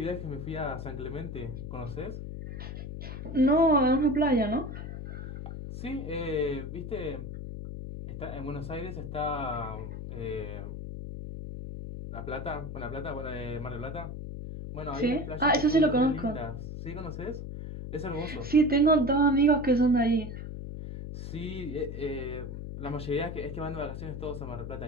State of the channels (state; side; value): noise; left; hum, 7 dB below the sound